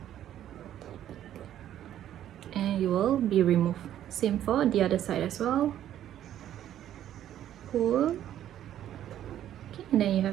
and you will be removed. Same for the other side as well. Pull. Okay, and then you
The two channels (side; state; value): left; quieter; 11.4 dB